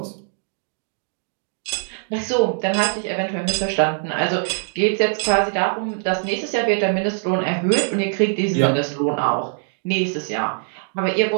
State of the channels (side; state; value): left; silent; digital silence